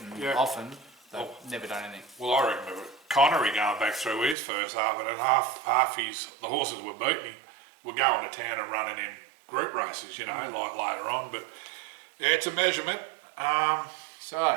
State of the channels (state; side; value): drops out; left; at 4.4 s